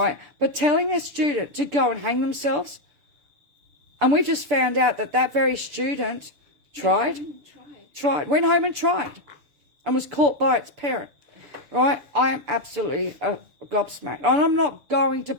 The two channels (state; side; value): late; left; 6.9 ms